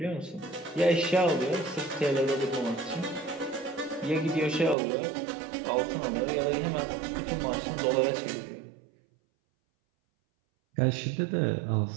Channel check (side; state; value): left; drops out; at 4.8 s